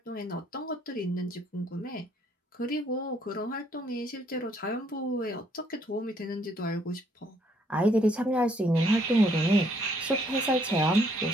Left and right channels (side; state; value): both; normal; correlation 0.67